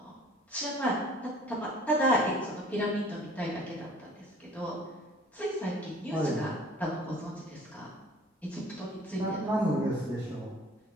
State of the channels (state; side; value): normal; both; correlation 0.51